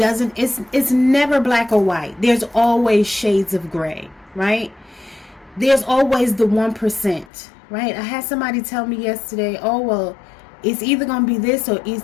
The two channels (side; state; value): right; drops out; at 7.2 s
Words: never black or white. There's always shades of gray, right? There's always the 1%, right? I had somebody tell me yesterday, oh, well, it's either going to be this or